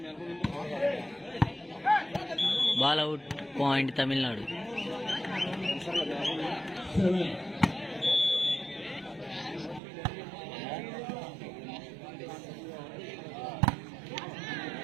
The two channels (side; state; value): left; drops out; at 9.8 s